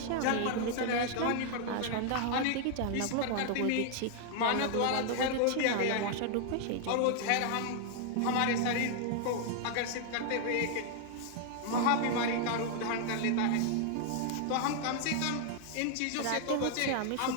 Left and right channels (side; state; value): both; different; correlation 0.00